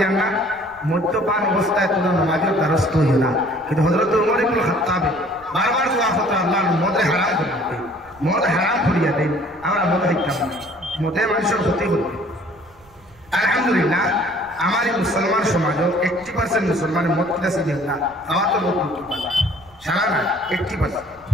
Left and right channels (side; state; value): right; noise; rumble, 27 dB below the sound